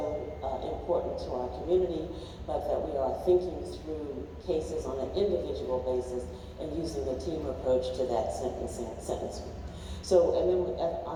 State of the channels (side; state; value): both; identical; correlation 1.00